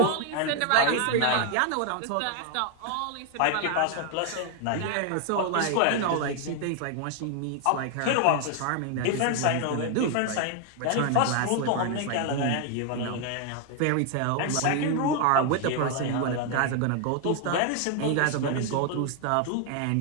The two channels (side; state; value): both; different; correlation 0.00